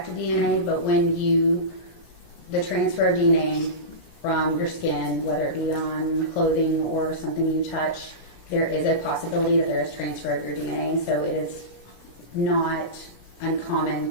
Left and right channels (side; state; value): right; late; 17 ms